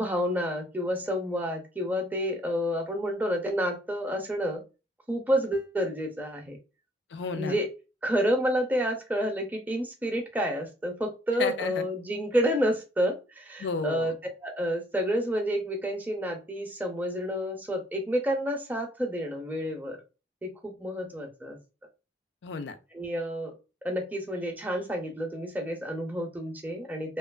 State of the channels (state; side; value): normal; both; correlation 0.64